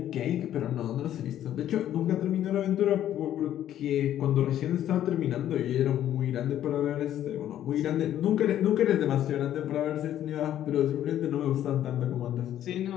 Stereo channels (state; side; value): quieter; right; 11.5 dB